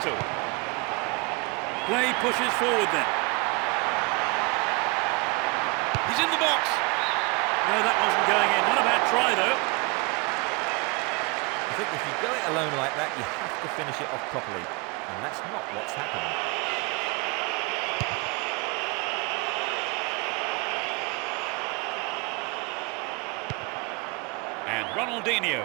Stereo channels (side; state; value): left; quieter; 28.1 dB